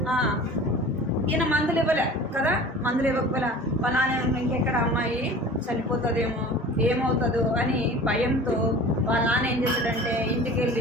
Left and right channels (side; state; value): both; normal; correlation 0.41